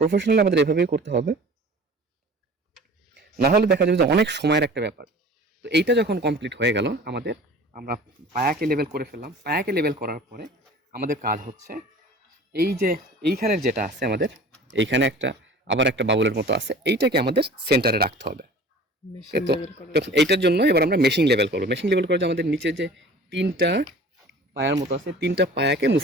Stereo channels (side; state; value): both; normal; correlation 0.44